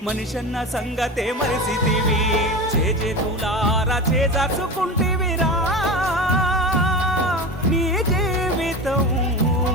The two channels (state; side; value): normal; both; correlation 0.27